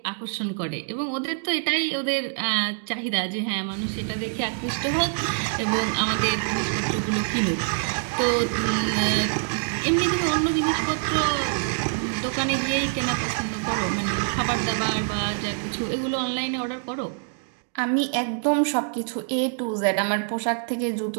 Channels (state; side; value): silent; left; digital silence